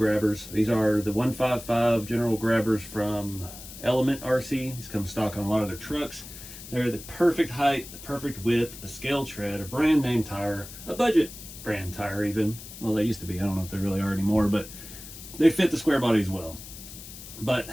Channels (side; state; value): left; noise; hiss, 14 dB below the sound